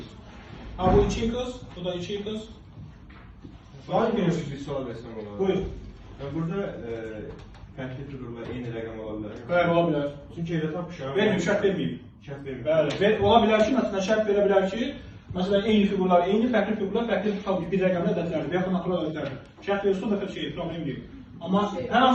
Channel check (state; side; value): identical; both; correlation 1.00